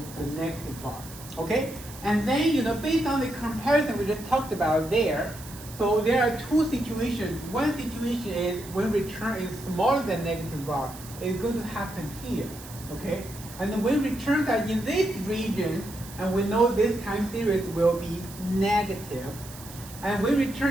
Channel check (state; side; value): noise; right; hiss, 16 dB below the sound